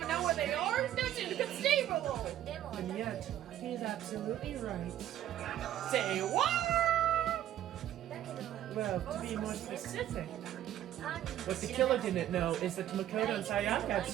know where they are? That's inconceivable. でも And yet, he is absolutely right. Say what? だけど Well, to be more specific, 犯人 what the killer didn't know is that Makoto and Sayaka had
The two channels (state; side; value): quieter; left; 12.0 dB